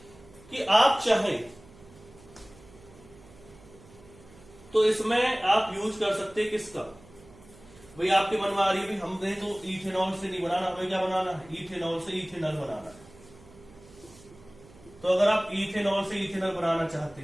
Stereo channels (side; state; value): right; noise; hum, 23 dB below the sound